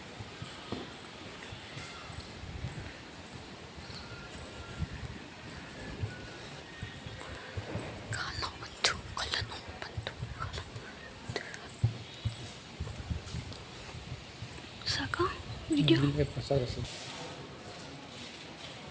ಸಾಕಾ ವಿಡಿಯೋ? ಪ್ರಸಾದ ಅಷ್ಟೇ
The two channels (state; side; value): identical; both; correlation 1.00